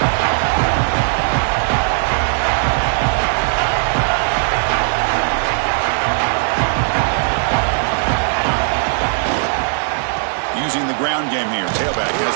Using the ground game here. Tailback has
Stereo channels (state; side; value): silent; left; digital silence